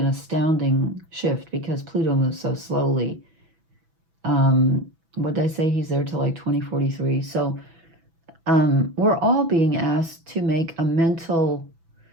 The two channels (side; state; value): left; late; 6.1 ms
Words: astounding shift because Pluto moves so slowly. What did I say? He's there till like 2043. So we're all being asked to make a mental,